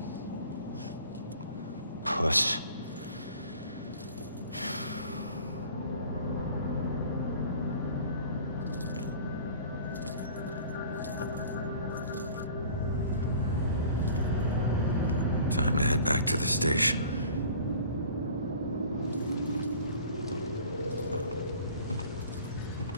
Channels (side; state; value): both; inverted; correlation -0.46